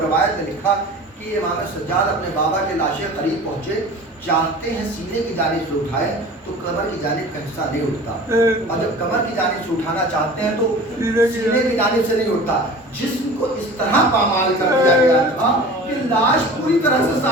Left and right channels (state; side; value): normal; both; correlation 0.40